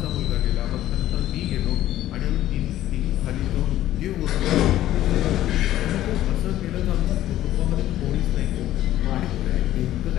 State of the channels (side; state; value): right; quieter; 13.6 dB